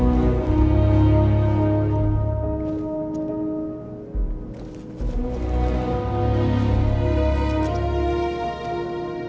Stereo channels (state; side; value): identical; both; correlation 1.00